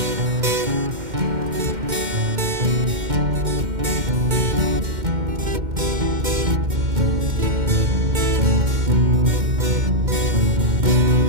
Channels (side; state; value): left; late; 2.1 ms